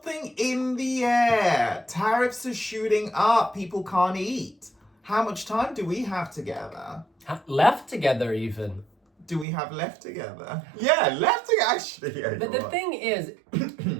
in the air. Tariffs are shooting up. People can't eat. How much time do we have together? Left together, even. Do we have left together? Yeah, left together, actually. Yeah, but the thing is,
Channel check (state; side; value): drops out; left; at 9.5 s